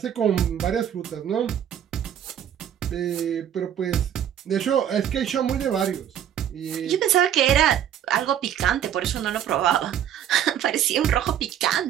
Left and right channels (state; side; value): quieter; left; 10.0 dB